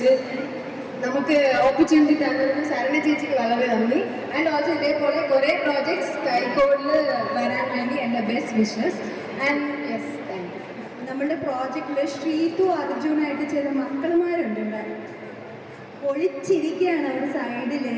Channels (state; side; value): identical; both; correlation 1.00